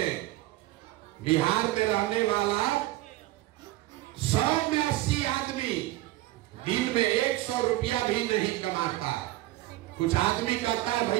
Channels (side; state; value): left; quieter; 16.9 dB